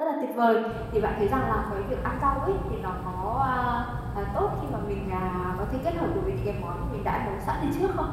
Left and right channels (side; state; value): both; identical; correlation 1.00